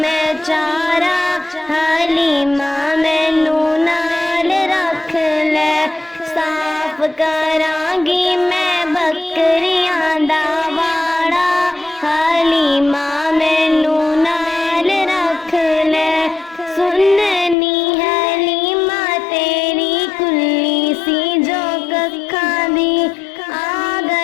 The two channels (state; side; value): drops out; right; at 17.6 s